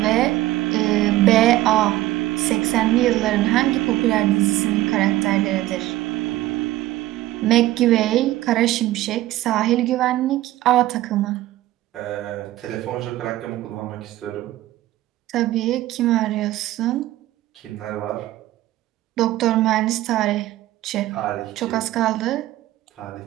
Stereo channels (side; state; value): left; quieter; 15.5 dB